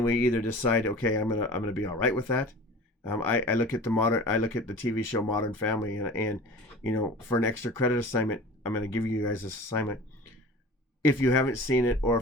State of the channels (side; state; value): both; normal; correlation 0.40